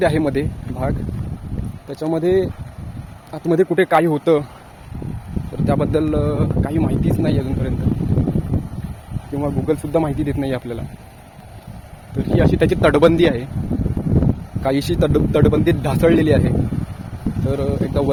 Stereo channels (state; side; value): identical; both; correlation 1.00